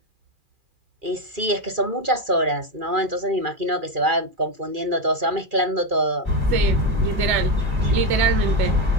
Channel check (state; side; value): late; left; 2.4 ms